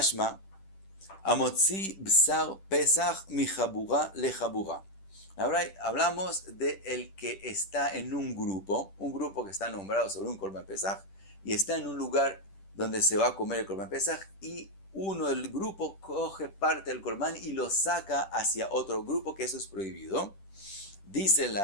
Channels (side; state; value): right; late; 10 ms